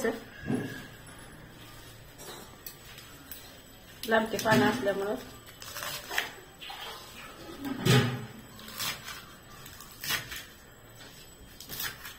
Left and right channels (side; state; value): both; identical; correlation 1.00